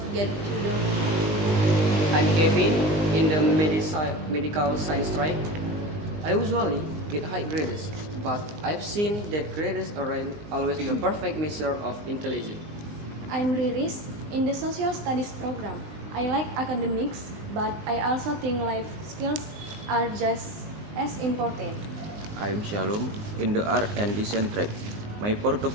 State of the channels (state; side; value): late; left; 19 ms